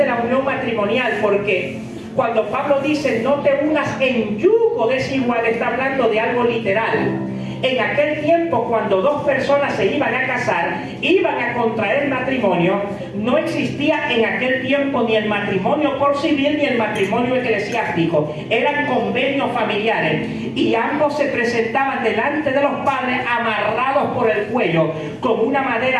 la unión matrimonial, porque cuando Pablo dice no te unas en yugo desigual, está hablando de algo literal. En aquel tiempo, cuando dos personas se iban a casar, iban a contraer matrimonio, no existía en aquel tiempo ni el matrimonio por civil ni el matrimonio eclesiástico. Eran convenios familiares y ambos se presentaban delante de los padres amarrados por el cuello, con una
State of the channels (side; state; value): both; identical; correlation 1.00